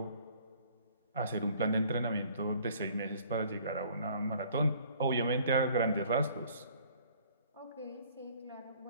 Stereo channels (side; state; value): both; inverted; correlation -0.56